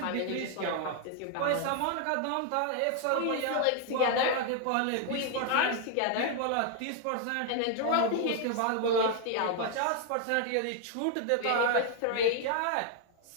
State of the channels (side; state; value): both; different; correlation 0.00